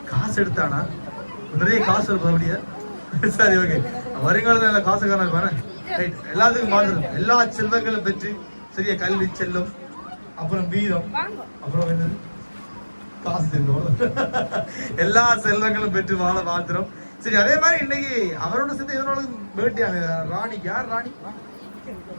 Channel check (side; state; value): both; inverted; correlation -1.00